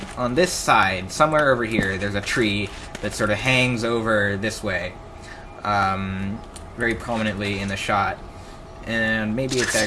On this side, somewhere over here, there's a tree that sort of hangs over this way, very prominently in the shot. And maybe it's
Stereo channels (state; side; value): identical; both; correlation 1.00